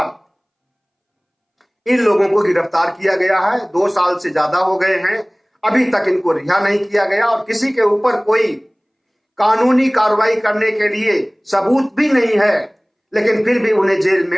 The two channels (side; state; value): both; identical; correlation 1.00